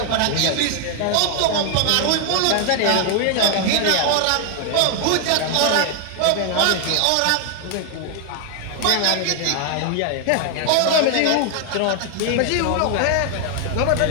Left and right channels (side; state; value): both; different; correlation 0.00